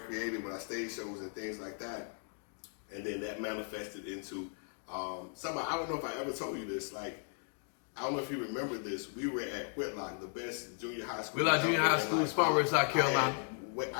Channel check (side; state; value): right; silent; 54 dB below the other